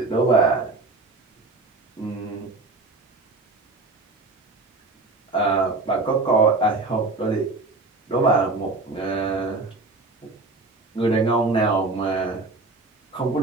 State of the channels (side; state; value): left; quieter; 3.4 dB